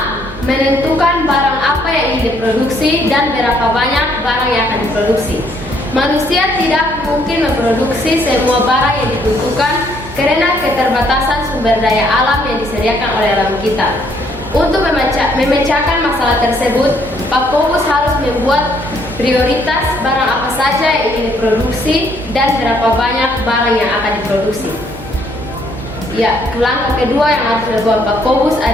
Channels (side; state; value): right; noise; hum, 16 dB below the sound